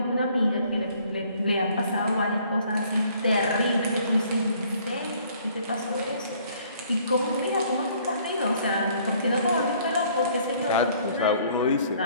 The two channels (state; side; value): inverted; both; correlation -0.60